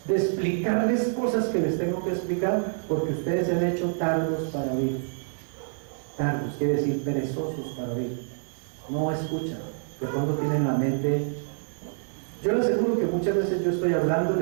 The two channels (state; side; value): silent; left; digital silence